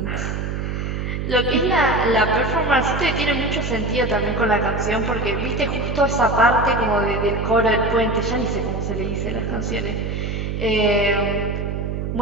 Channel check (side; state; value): right; noise; hum, 3 dB below the sound